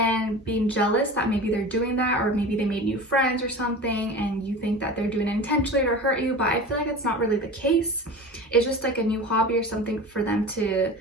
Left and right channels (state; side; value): normal; both; correlation 0.34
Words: being jealous that maybe they're doing that, or maybe they made new friends or something and you think that they're doing it intentionally to hurt you, but I feel like it's not really the case. It's just like a new hobby or something for them to,